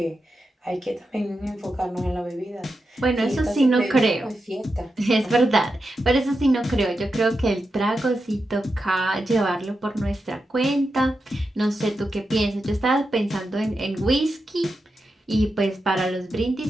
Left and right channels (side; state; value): both; normal; correlation 0.89